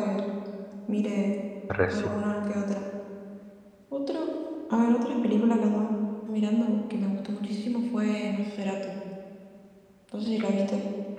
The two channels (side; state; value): both; identical; correlation 1.00